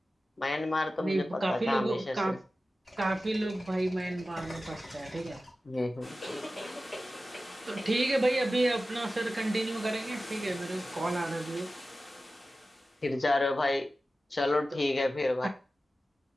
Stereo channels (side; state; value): both; normal; correlation 0.95